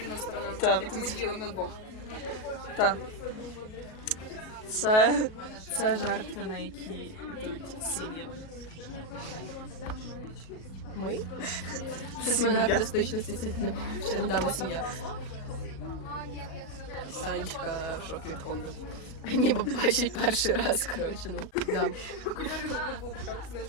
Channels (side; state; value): right; late; 37 ms